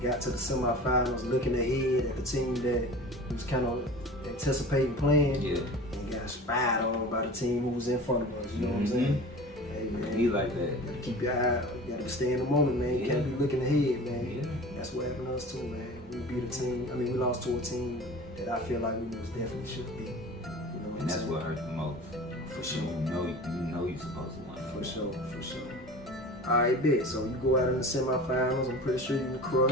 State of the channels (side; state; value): both; normal; correlation 0.38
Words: Got to the semifinals, looking ahead at the team that was kind of anticipating playing, and got spied on by the team who was in front of us. You know what I'm saying? Hey, man, Be like that. keep your eye. You gotta stay in the moment, man. You can't be looking ahead, man. Yeah. That's what happened to us too, man. We beat a team. I mean, we lost to a team that I feel like we most definitely should be. You know what And that's what hurt the most. For sure. You know you're supposed to win. For sure. All right, bet. So you go out in the semifinals. I'm pretty sure you can